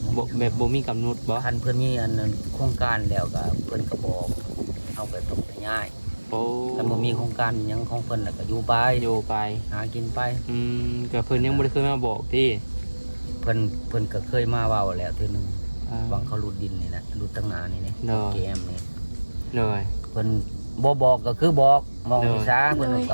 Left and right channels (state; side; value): inverted; both; correlation -1.00